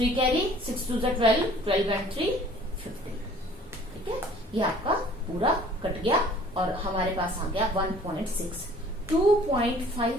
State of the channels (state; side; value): normal; both; correlation 0.52